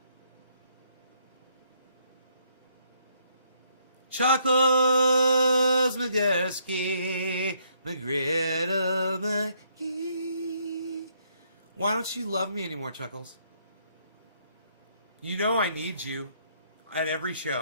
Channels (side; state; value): both; inverted; correlation -0.70